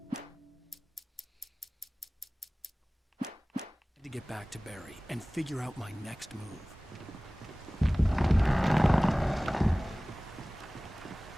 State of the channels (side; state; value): both; normal; correlation 0.98